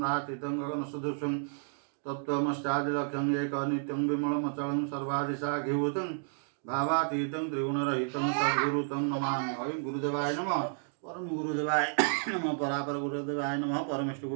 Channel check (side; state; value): left; silent; digital silence